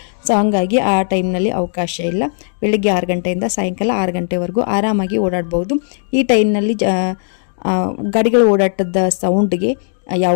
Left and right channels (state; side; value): silent; right; digital silence